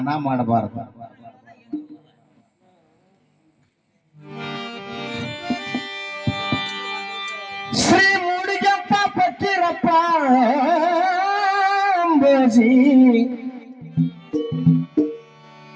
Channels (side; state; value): both; identical; correlation 1.00